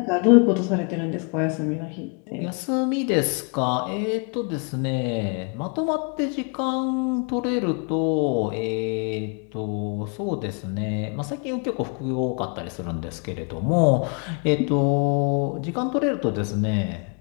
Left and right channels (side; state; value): right; quieter; 35.8 dB